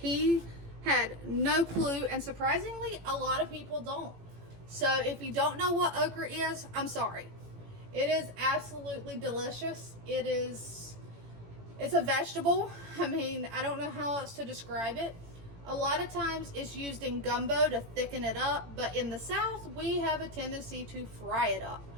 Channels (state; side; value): late; left; 18 ms